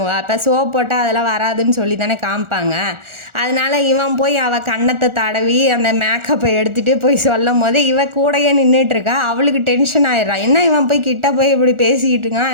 இப்போ சோப் போட்டால் அதெல்லாம் வராதுன்னு சொல்லி தானே காமிப்பாங்க. அதனால இவன் போய் அவள் கன்னத்தை தடவி அந்த மேக்கப்பை எடுத்துகிட்டு போய் சொல்லும் போது இவ கூடையே நின்றுட்டுருக்கா. அவளுக்கு டென்ஷன் ஆயிடுறா. என்ன இவன் போய் கிட்ட போய் இப்படி பேசிக்கிட்டு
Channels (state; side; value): late; left; 1.4 ms